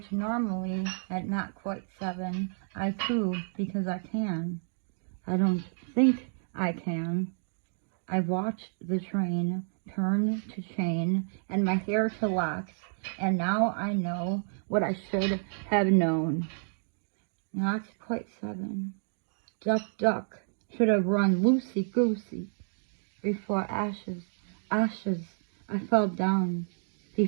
normally, at not quite 7, I coo because I can. I don't think I can. I watched the train turn to chain and my hair to locks, and now I know what I should have known. Not quite 7. Duck, should have run loosey-goosey. Before ashes, I fell down.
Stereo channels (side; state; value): left; silent; digital silence